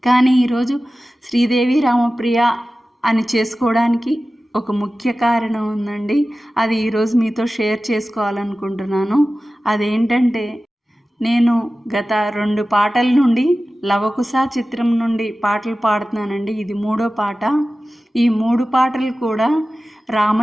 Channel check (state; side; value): normal; both; correlation 0.95